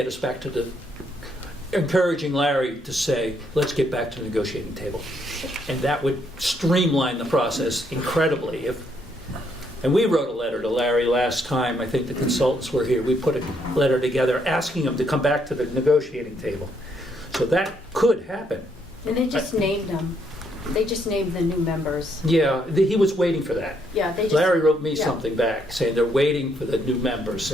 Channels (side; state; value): both; normal; correlation 0.73